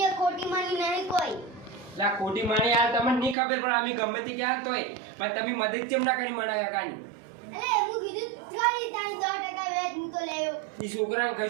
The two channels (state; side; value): drops out; left; at 3.4 s